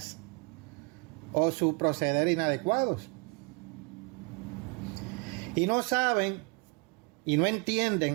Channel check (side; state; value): left; quieter; 31.4 dB